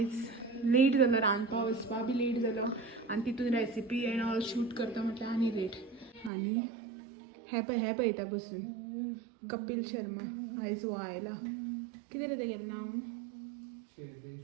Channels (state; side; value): drops out; left; at 6.3 s